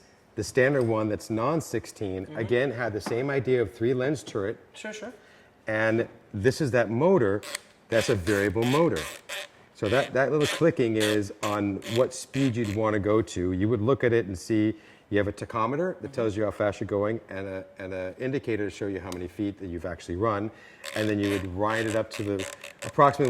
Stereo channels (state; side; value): identical; both; correlation 1.00